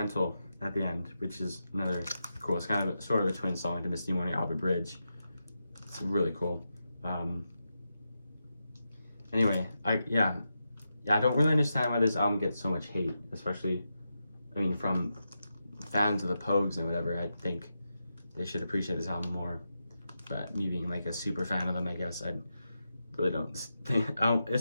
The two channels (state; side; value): inverted; both; correlation -0.88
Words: at the end, which is another cool. It's kind of sort of a twin song to Misty Morning Albert Bridge. It's really cool. Anyway, I don't really understand why this album gets so much hate, especially, from fans of the Pogues and whatever, I think they should appreciate this album more. But me being like a super fan of them, I guess I really don't think,